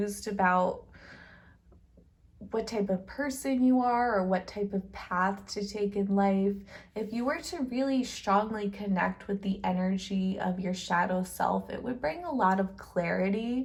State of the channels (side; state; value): both; identical; correlation 1.00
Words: about what type of person you are or what type of path to take in life, if you were to really strongly connect with the energy of your shadow self, it would bring a lot of